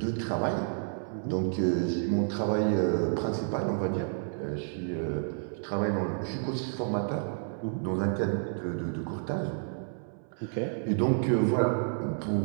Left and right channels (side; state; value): left; silent; 58 dB below the other